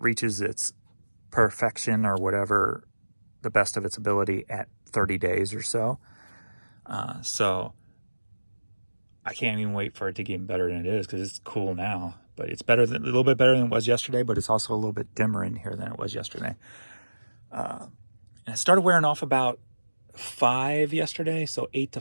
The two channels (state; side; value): inverted; both; correlation -1.00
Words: reaches its perfection or whatever, the best of its ability at 30 days or so. So I can't even wait for it to get better than it is, because it's cool now. But it's a little bit better than it was yesterday, but it's also a little bit dimmer in here than it was yesterday. And I started wearing off about 5 yesterday, so 8 to